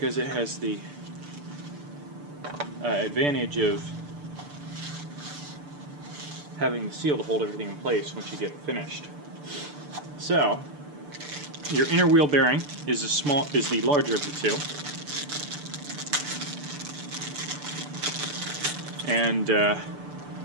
it has the advantage of having the seal to hold everything in place once you get finished. So, your inner wheel bearing is the larger of the two, and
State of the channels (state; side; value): late; left; 6.8 ms